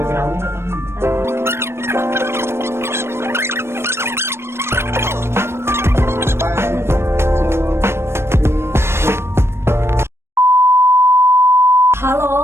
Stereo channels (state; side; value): late; left; 0.12 ms